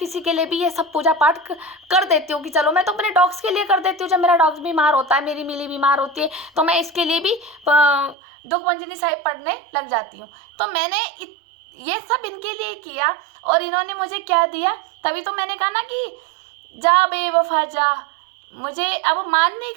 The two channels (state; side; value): drops out; left; at 8.2 s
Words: के लिए भी ये सब पूजा पाठ कर देती हूँ कि चलो मैं तो अपने डॉग्स के लिए कर देती हूँ। जब मेरा डॉग्स बीमार होता है, मेरी मिली बीमार होती है, तो मैं इसके लिए भी दुख भंजनी साहिब पढ़ने लग जाती हूँ। तो मैंने ये सब इनके लिए किया और इन्होंने मुझे क्या दिया, तभी तो मैंने कहा ना कि जा बेवफा जा, मुझे अब मान नहीं